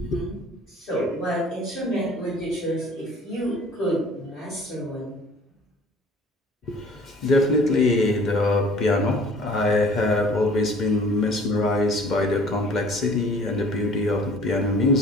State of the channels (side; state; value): both; normal; correlation 0.51